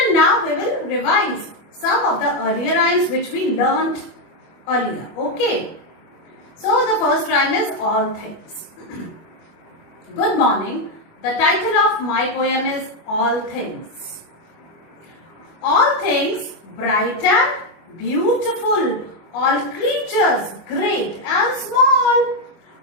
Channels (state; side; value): late; right; 24 ms